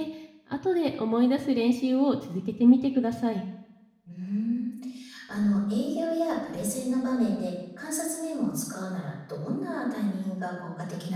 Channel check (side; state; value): both; identical; correlation 1.00